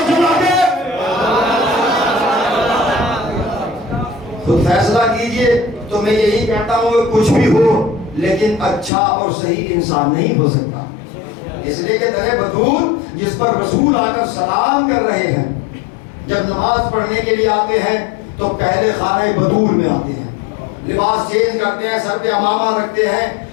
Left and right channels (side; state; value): right; drops out; at 8.9 s